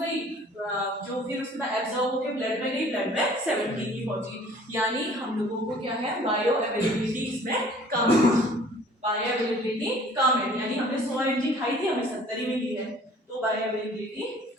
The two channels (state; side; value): normal; both; correlation 0.52